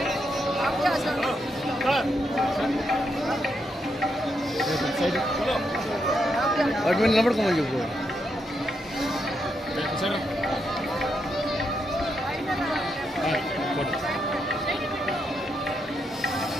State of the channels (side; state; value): both; normal; correlation 0.81